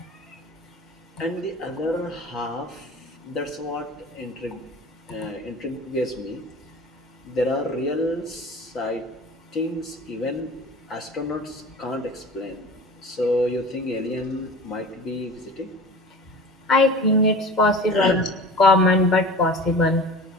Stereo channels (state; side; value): normal; both; correlation 0.37